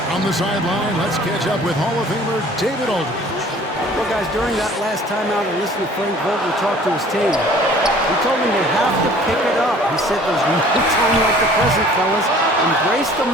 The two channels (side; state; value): both; normal; correlation 0.51